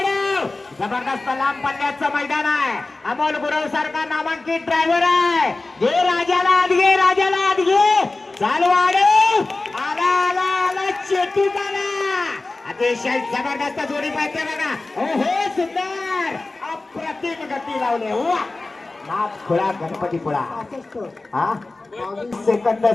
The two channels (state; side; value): quieter; right; 3.3 dB